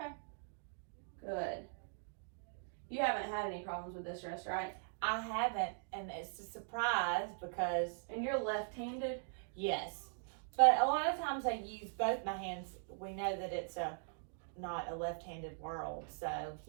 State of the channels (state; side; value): silent; left; digital silence